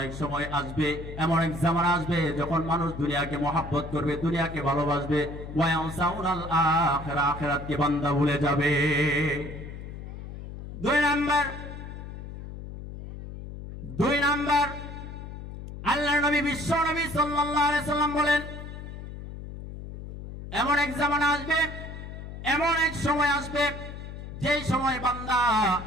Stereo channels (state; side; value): noise; left; hum, 10 dB below the sound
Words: এক সময় আসবে, এমন এক জামানা আসবে যখন মানুষ দুনিয়াকে মহব্বত করবে, দুনিয়াকে ভালোবাসবে, ওয়া ইয়ানসাউনাল আখিরা, আখিরাতকে বান্দা ভুলে যাবে। 2 নাম্বার আল্লাহর নবী বিশ্ব নবী সাল্লাল্লাহু আলাইহি সাল্লাম বলেন, এমন এক জামানা আসবে, এমন এক সময় আসবে যেই সময় বান্দা